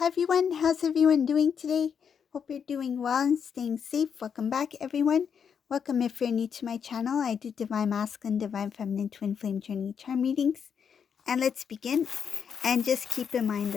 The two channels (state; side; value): quieter; right; 7.2 dB